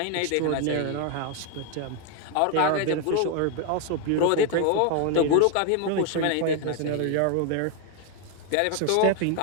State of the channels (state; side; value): different; both; correlation 0.01